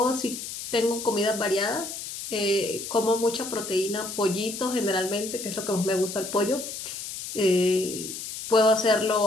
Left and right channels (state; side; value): noise; left; hiss, 8 dB below the sound